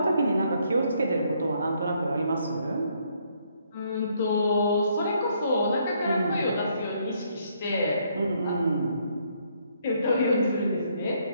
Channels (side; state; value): both; inverted; correlation -0.70